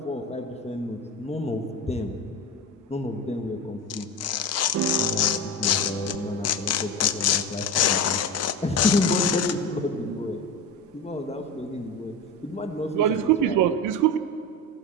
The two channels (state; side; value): normal; both; correlation 0.24